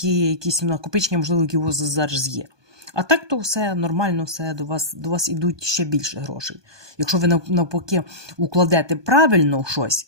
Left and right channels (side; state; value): left; late; 1.2 ms